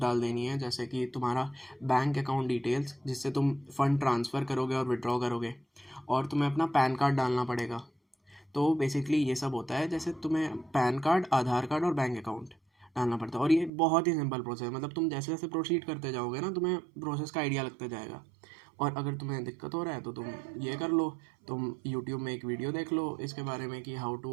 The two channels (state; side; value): drops out; left; at 13.7 s